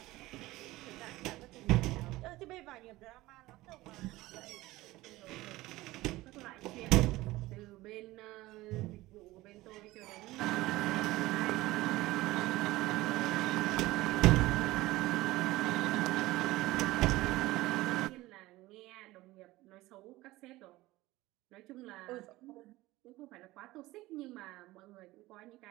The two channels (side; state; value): left; quieter; 18.5 dB